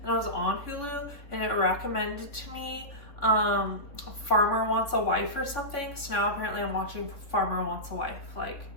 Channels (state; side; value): late; right; 3.4 ms